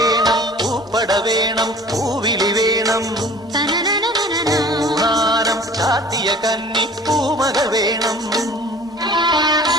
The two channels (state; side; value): normal; both; correlation 0.46